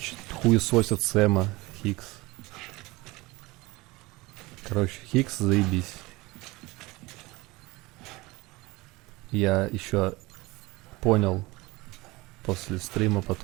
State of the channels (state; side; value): quieter; left; 22.1 dB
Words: хуесосят Сэма, Хикс. Короче, Хикс, заебись. Я еще понял после стрима